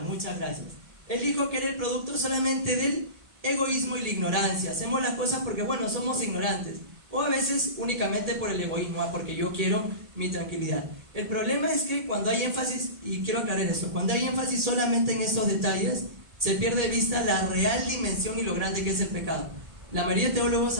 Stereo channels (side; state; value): left; late; 1.7 ms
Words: gracias. Él dijo que era el producto solamente del egoísmo y la ignorancia. Hacemos las cosas porque, bueno, somos ignorantes. O a veces únicamente por el egoísmo, porque yo quiero mi tranquilidad. El problema es que cuando hay énfasis, y quiero aclarar esto, cuando hay énfasis solamente en estos detalles, se pierde de vista la real dimensión y lo grande que es el pecado. La mayoría de teólogos